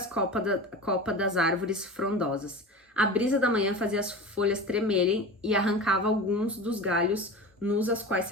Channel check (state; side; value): normal; both; correlation 0.32